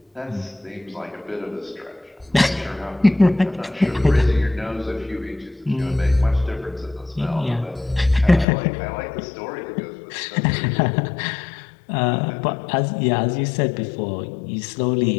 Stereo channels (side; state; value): right; drops out; at 8.5 s